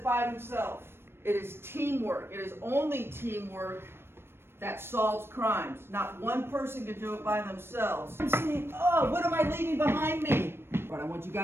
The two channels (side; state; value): left; late; 0.12 ms